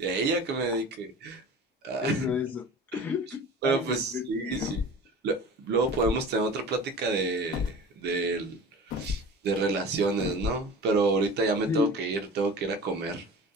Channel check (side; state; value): both; normal; correlation 0.38